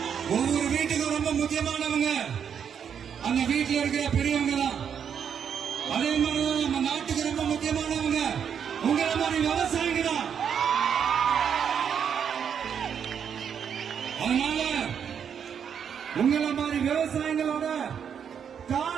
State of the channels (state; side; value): quieter; left; 7.8 dB